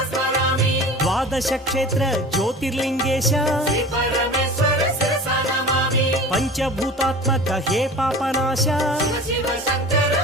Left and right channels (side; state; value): both; normal; correlation 0.38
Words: द्वादश क्षेत्र ज्योतिर्लिंगेश पंचभूतात्मक हे पापनाश